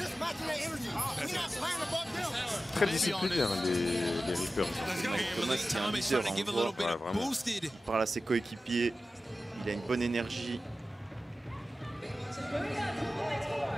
matching their energy. We're not playing above them. Très discipliné, hein, les Reapers. Thomas qui est un leader, hein, on le voit. Ouais, vraiment. Il parle à ses coéquipiers. Il a une bonne énergie. «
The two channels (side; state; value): both; normal; correlation 0.94